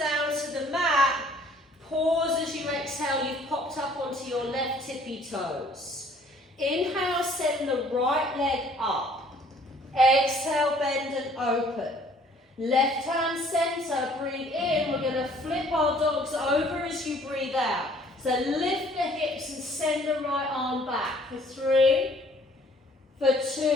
to the mat. Pause as you exhale, you've popped up onto your left tippy toes. Inhale, send the right leg up. Exhale, bend and open. Left hand center, breathe in. We're going to flip our dogs over as you breathe out. So lift the hips and send the right arm back. For 3, for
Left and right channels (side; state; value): both; normal; correlation 0.58